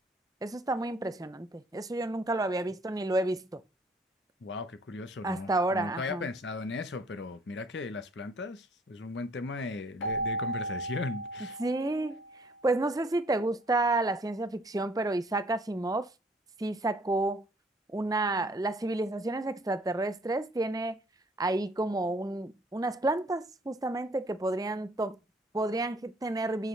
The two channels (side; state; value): both; normal; correlation 0.60